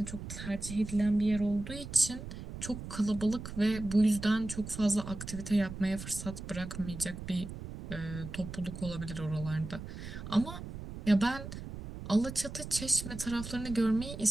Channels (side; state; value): right; noise; rumble, 10 dB below the sound